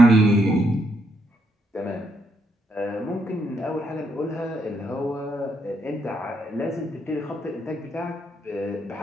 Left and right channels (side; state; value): both; normal; correlation 0.76